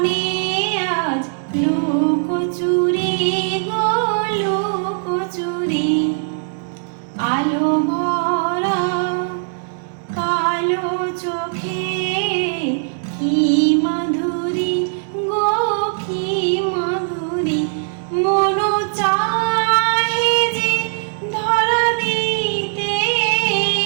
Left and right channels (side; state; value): left; silent; digital silence